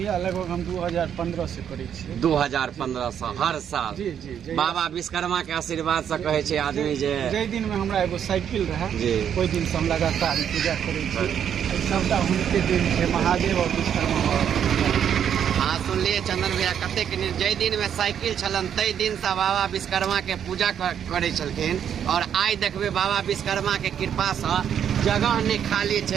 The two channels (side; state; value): left; quieter; 8.8 dB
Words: लगभग हम 2015 से करे छियै। 2015 से हर साल? जी जी। बाबा विश्वकर्मा के आशीर्वाद से कहे छै आदमी जे जै दिन में हमरा एगो साइकिल रहे जी कोई दिन से हम लगातार पूजा करे छियै। सबटा हुनके दिन छै, महादेव और विश्वकर्मा। हाँ सुनलिए चंदन भैया कतेक जै दिन में साइकिल छलन तै दिन से बाबा विश्वकर्मा के पूजा करे छलखिन। और आइ देखबे बाबा विश्वकर्मा के कृपा से जगह नहीं खाली